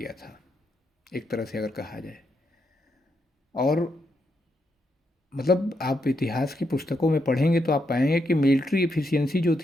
था, एक तरह से अगर कहा जाए। और मतलब आप इतिहास की पुस्तकों में पढ़ेंगे तो आप पाएंगे कि मिलिट्री एफिशिएंसी जो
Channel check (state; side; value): normal; both; correlation 0.80